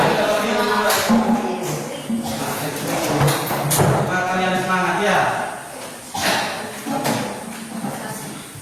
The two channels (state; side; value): identical; both; correlation 1.00